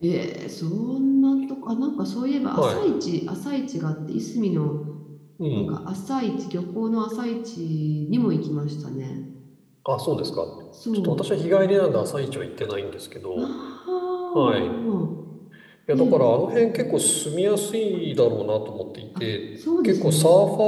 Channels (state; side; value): identical; both; correlation 1.00